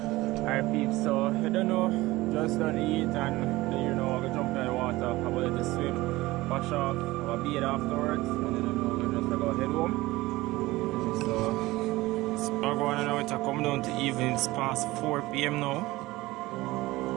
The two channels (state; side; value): quieter; left; 19.2 dB